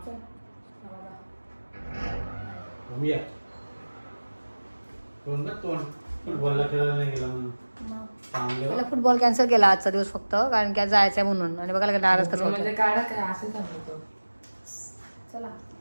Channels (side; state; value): both; inverted; correlation -1.00